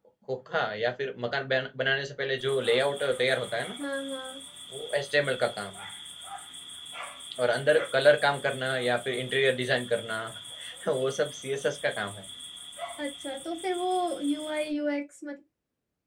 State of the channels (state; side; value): identical; both; correlation 1.00